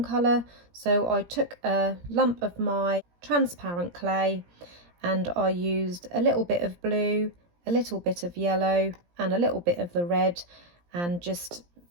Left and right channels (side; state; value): left; late; 17 ms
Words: colour, so I took a lump of my transparent clay and I used a little bit of blue, a little bit of yellow and a little bit of the red, and just